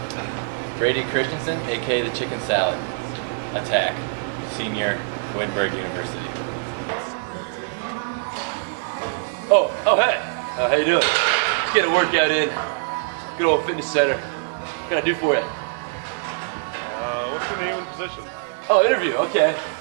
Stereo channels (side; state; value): left; silent; digital silence